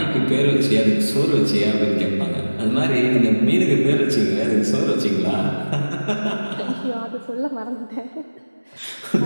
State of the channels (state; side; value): inverted; both; correlation -1.00